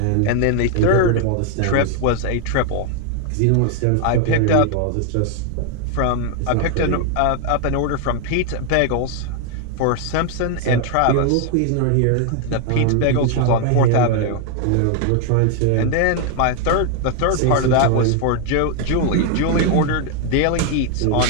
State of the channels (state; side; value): different; both; correlation 0.00